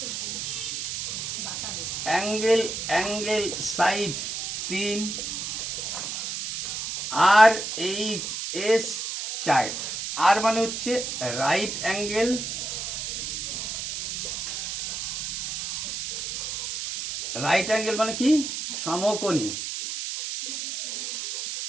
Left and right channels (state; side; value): noise; right; hiss, 4 dB below the sound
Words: অ্যাঙ্গেল অ্যাঙ্গেল সাইড তিন, আর এইট এস চার। আর মানে হচ্ছে রাইট অ্যাঙ্গেল, রাইট অ্যাঙ্গেল মানে কি সমকোণী,